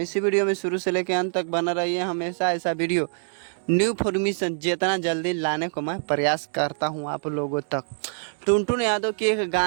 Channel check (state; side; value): silent; left; digital silence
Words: इसी वीडियो में शुरू से लेकर अंत तक बना रहिए। हमेशा ऐसा वीडियो न्यू फॉर्मेशन जितना जल्दी लाने को मैं प्रयास करता हूं आप लोगों तक। टुनटुन यादव की एक